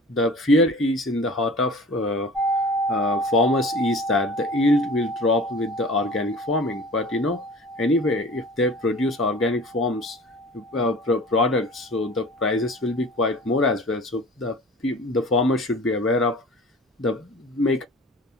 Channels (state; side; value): normal; both; correlation 0.42